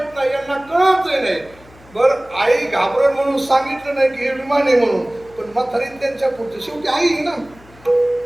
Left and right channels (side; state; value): left; noise; hum, 25 dB below the sound